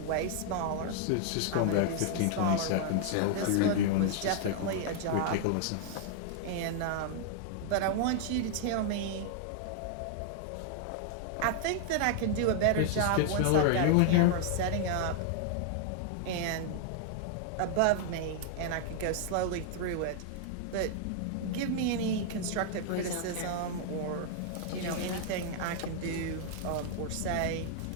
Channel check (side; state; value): both; different; correlation 0.00